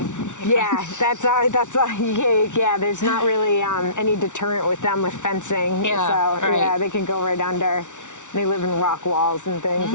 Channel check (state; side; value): late; right; 0.86 ms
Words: Yeah, yeah. There's not really any deterrent with them with fencing. Yeah, So right. yeah, they can go right under. They live in rock walls and things.